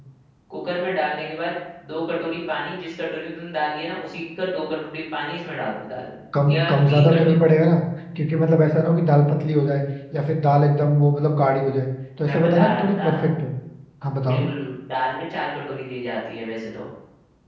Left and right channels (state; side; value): identical; both; correlation 1.00